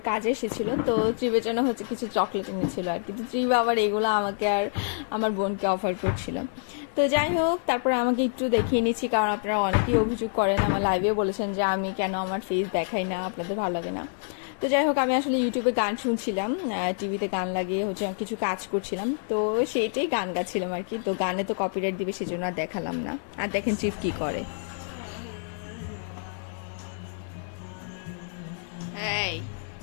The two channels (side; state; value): right; silent; digital silence